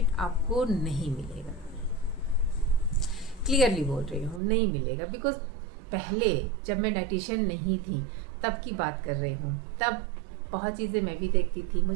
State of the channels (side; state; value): left; drops out; at 4.4 s